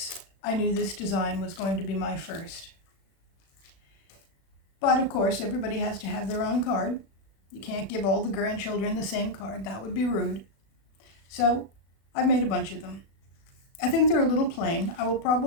I knew this design was going to be my first. But of course, everybody has to have their own card. You can't give all the grandchildren the same card. That would be rude. So I've made a bunch of them. I think they're a little plain. I will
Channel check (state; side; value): late; right; 36 ms